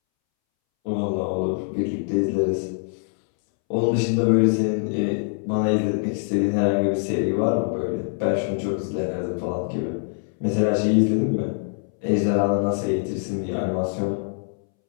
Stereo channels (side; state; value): right; silent; 63 dB below the other